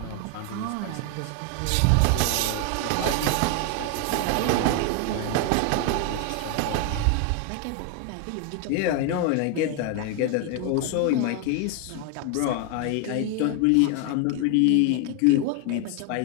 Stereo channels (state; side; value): different; both; correlation 0.01